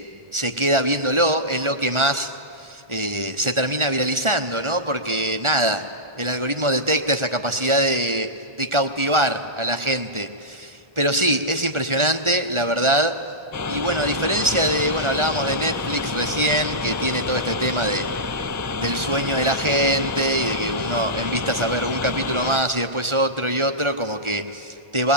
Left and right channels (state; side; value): late; left; 1.4 ms